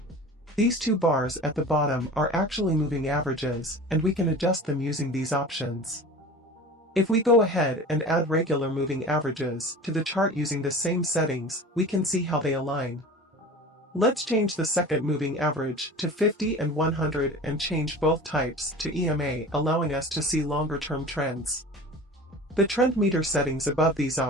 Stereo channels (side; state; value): both; normal; correlation 0.38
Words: These 2 bars at the bottom are actually moving averages, and we can adjust them using these options. If we go ahead and add regular moving averages to the chart using the same settings, we can see how they align. Let's change the second moving average to 50 and 100 and change both types to EMA, allowing us to see longer-term trends. The trend meter settings above these